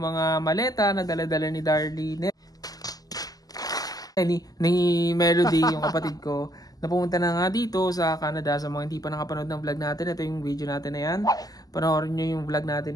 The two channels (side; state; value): right; late; 0.18 ms